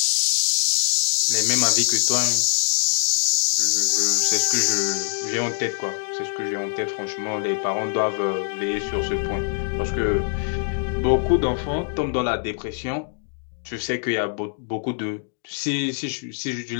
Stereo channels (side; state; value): right; silent; digital silence